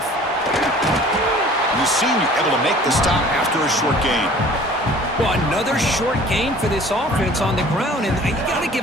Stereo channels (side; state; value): both; normal; correlation 0.49